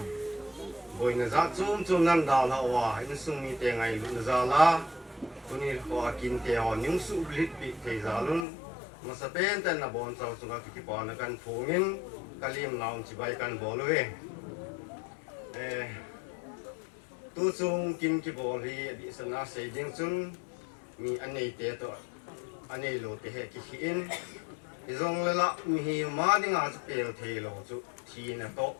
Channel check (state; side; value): drops out; right; at 8.5 s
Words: rồi người ra chung năm đào là hòa anh sung mi tiền ngày luôn ra lá tôi đi qua kinh tế họ những sự lít bị thế ra luôn mà sẽ bên tên là bọn cháu chúng ta cái bọn nó cần phổ biến cái liềm nào chỉ bay cần bỏ lưỡi tôi chung kinh cái bỏ lì bị sân na xây dựng chung mi anh này thế thôi anh này lột thế cái khiên thì rong là mi mà đi ngã sẽ bèo thế lo chú thì là tốt